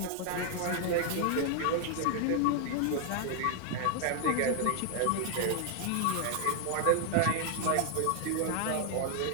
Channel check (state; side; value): different; both; correlation 0.00